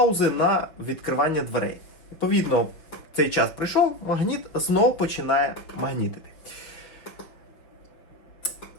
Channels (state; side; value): late; right; 6.2 ms